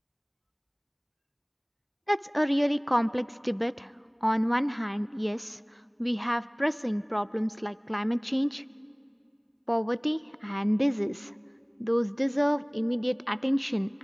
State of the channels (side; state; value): both; identical; correlation 1.00